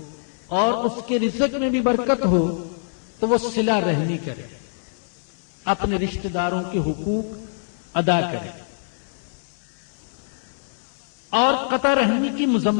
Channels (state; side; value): silent; right; 63 dB below the other